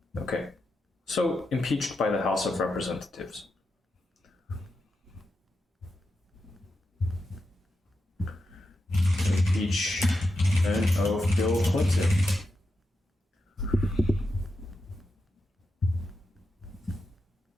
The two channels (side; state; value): both; normal; correlation 0.87